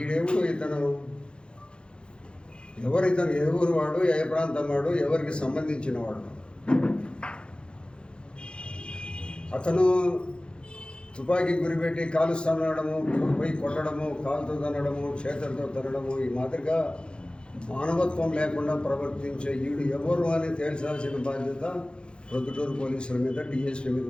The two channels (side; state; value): right; late; 0.054 ms